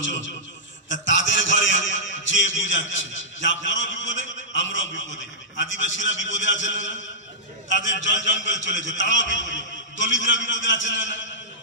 তাদের ঘরে যে বুঝাচ্ছে যে আপনারাও বিপদে, আমরাও বিপদে, আদিবাসীরা বিপদে আছেন না, তাদের জল জঙ্গল চলেছে, তারাও বিপদে, দলিতরা বিপদে আছেন না,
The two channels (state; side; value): normal; both; correlation -0.14